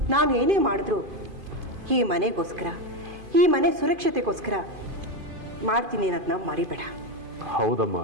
ನಾನು ಏನೇ ಮಾಡಿದ್ರು ಈ ಮನೆಗೋಸ್ಕರ, ಈ ಮನೆ ಸುರಕ್ಷತೆಗೋಸ್ಕರ ಮಾಡ್ತೀನಿ ಅನ್ನೋದನ್ನ ಮರಿಬೇಡ. ಹೌದಮ್ಮ,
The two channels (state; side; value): late; left; 2.5 ms